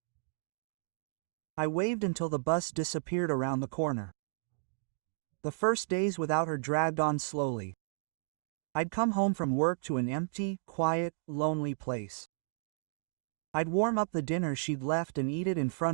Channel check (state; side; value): silent; left; digital silence